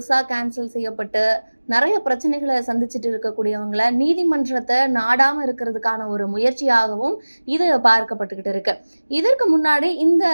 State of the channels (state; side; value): inverted; both; correlation -1.00